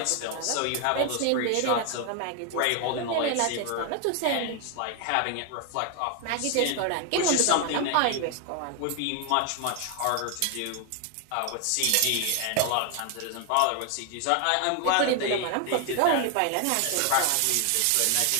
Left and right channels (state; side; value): different; both; correlation 0.01